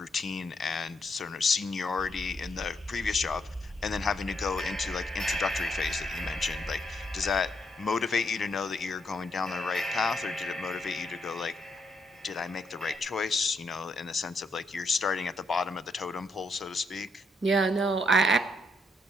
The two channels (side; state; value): both; normal; correlation 0.76